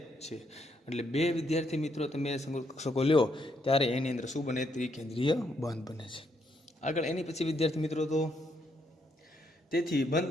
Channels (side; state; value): both; normal; correlation 0.75